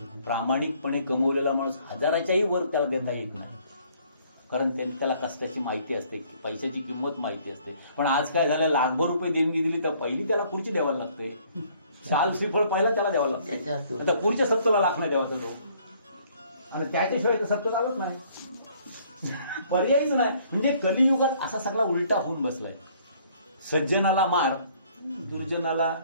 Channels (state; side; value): inverted; both; correlation -0.61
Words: प्रामाणिकपणे कमवलेला माणूस 1000च्याही वर त्याला देता येत नाही, कारण त्याला कष्टाची माहिती असते, पैशाची किंमत माहिती असते. पण आज काय झालं, लाखभर रुपये देणगी दिली तर पहिली त्याला खुर्ची द्यावायला लागते, शाल श्रीफळ पहिला त्याला द्यावं लागतं. आता पुढच्या सप्ताहाला लाख नाही द्यावाचा तो, आणि त्याच्याशिवाय तर सप्ताह चालत नाही, पर्यायच नाही. म्हणजे कलियुगात असा सगळा उलटा होऊन बसलाय. सज्जनाला मार, दुर्जनाला